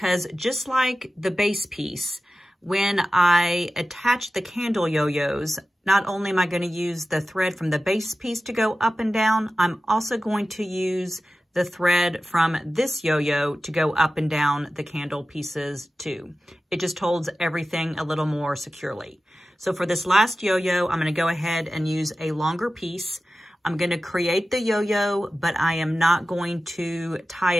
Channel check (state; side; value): normal; both; correlation 0.94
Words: just like the base piece, When I attach the candle yo-yos, not only am I going to use the thread from the base piece to go up and down, I'm also going to use the thread from this yo-yo to go up and down the candle pieces too. It just holds everything a little more securely. So for this last yo-yo, I'm going to go ahead and use a longer piece. I'm going to create the yo-yo, but I am not going to tie